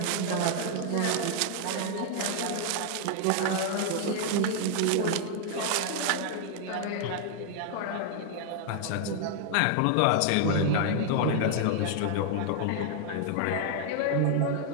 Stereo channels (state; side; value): different; both; correlation 0.00